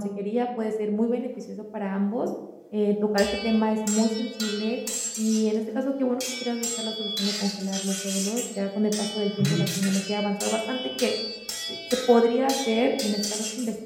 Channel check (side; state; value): both; identical; correlation 1.00